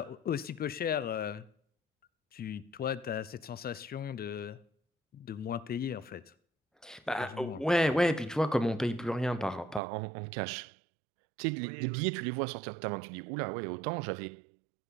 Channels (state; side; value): drops out; left; at 9.8 s